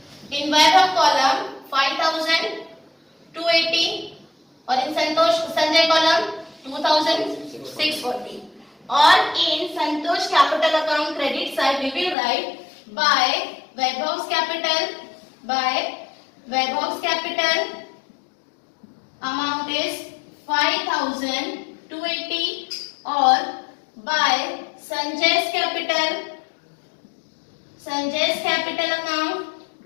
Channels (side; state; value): right; drops out; at 12.2 s